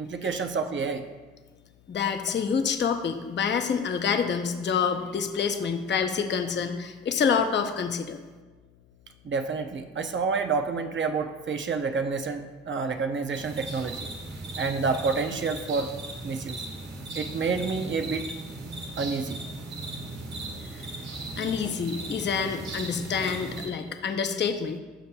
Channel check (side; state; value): left; noise; hum, 28 dB below the sound